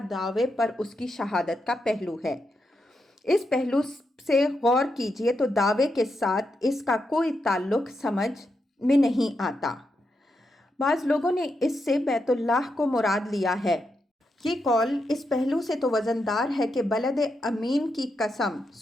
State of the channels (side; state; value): both; normal; correlation 0.84